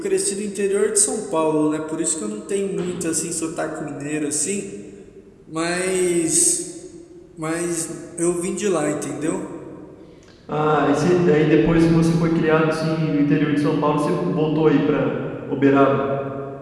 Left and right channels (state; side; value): identical; both; correlation 1.00